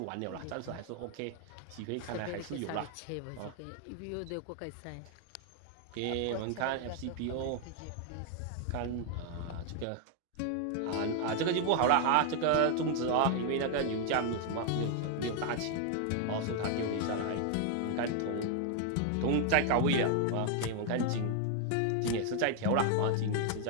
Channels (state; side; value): different; both; correlation 0.00